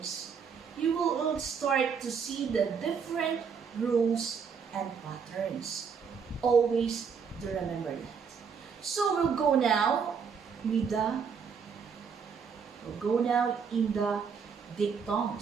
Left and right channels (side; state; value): left; quieter; 6.3 dB